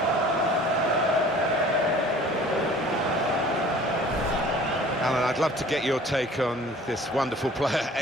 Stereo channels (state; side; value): normal; both; correlation 0.49